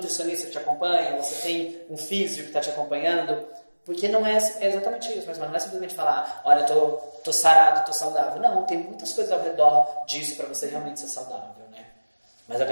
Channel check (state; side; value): inverted; both; correlation -1.00